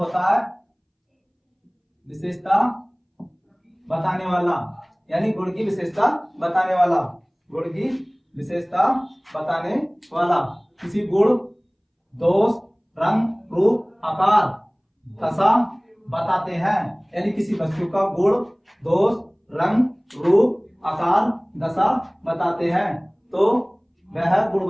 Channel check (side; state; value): both; identical; correlation 1.00